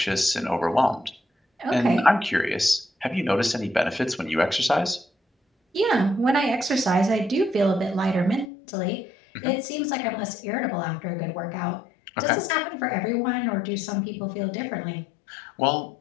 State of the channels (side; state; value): right; drops out; at 8.5 s